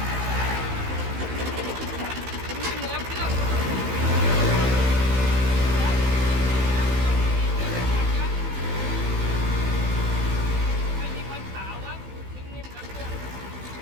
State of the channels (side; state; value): left; late; 15 ms